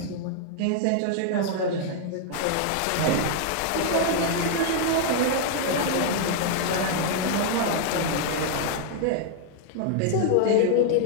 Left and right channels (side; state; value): both; different; correlation 0.00